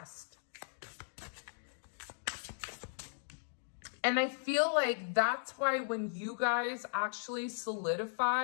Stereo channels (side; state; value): right; silent; digital silence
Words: And I feel like that's why when you guys actually